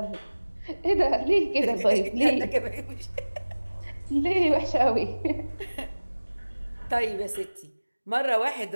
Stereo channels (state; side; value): inverted; both; correlation -1.00